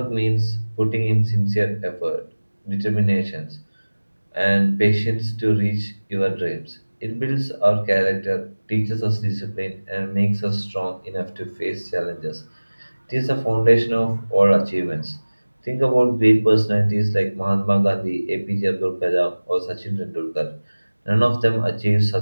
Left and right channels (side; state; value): both; inverted; correlation -1.00